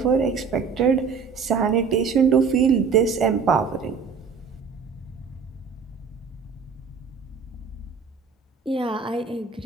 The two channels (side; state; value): left; quieter; 5.8 dB